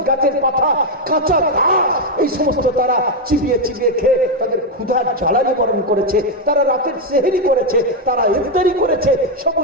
গাছের পাতা, কাঁচা ঘাস, এই সমস্ত তারা চিবিয়ে চিবিয়ে খেয়ে তাদের ক্ষুধার জ্বালা নিবারণ করেছে। তারা রাতের সেহরি করেছে, তারা ইফতারি করেছে,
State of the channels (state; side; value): normal; both; correlation 0.02